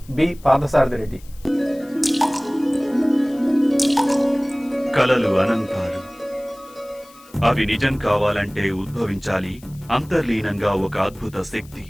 బి పార్థసారథి రెడ్డి. కలలు అనంతాలు, అవి నిజం కావాలంటే ఉద్భవించాలి అంతర్లీనంగా ఒక అద్భుత శక్తి.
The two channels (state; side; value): noise; left; hiss, 25 dB below the sound